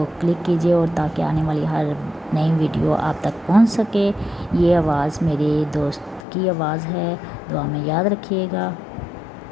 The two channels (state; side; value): drops out; right; at 6.2 s